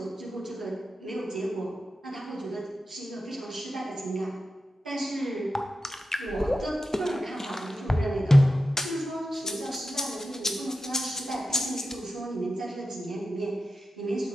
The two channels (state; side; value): normal; both; correlation 0.90